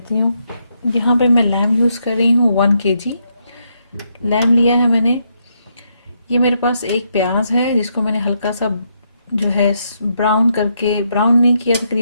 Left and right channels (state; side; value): inverted; both; correlation -0.78